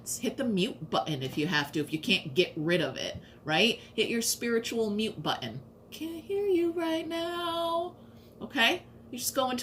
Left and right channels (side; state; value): both; identical; correlation 1.00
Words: Hit the mute button if you have to, if you can't get rid of it, right? Hit your spiritual mute button. Can't hear you right now, okay? You just go